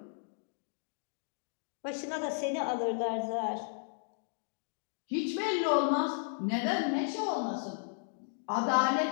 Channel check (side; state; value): right; silent; digital silence